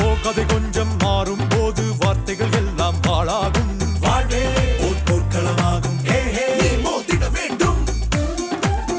கதை கொஞ்சம் மாறும் போது வார்த்தைகள் எல்லாம் பாழாகும். வாழ்வே ஒரு போர்க்களமாகும். நீ மோதிட வேண்டும்.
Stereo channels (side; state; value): both; identical; correlation 1.00